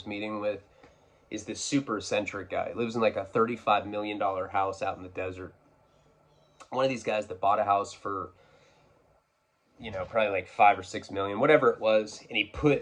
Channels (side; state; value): both; identical; correlation 1.00